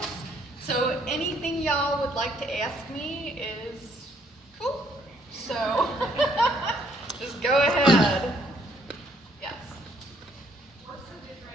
So anything y'all would like to ask me is cool. So just go ahead. Yes. What's the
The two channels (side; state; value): both; normal; correlation 0.67